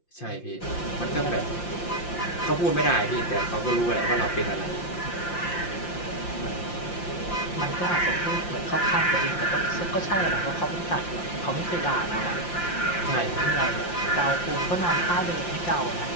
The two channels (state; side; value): late; right; 5.7 ms